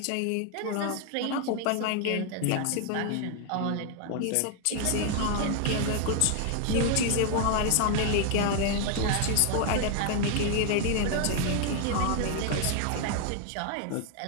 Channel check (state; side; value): different; both; correlation 0.00